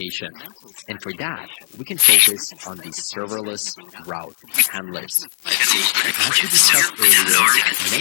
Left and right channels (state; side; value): silent; right; 58 dB below the other